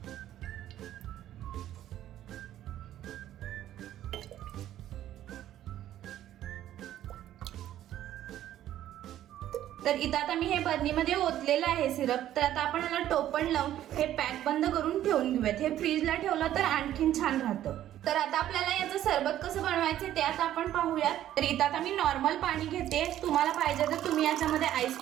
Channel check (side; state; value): left; quieter; 12.3 dB